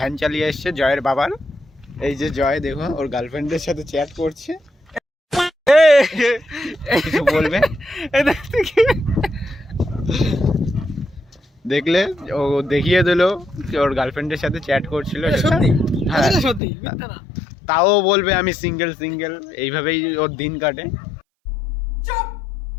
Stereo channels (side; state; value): right; drops out; at 16.6 s